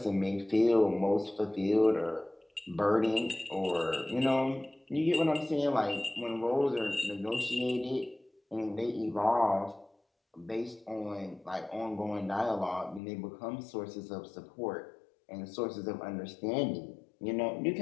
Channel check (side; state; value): right; drops out; at 13.0 s